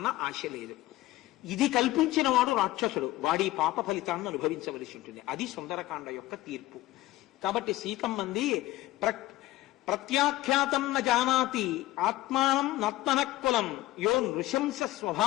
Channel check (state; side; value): quieter; right; 17.1 dB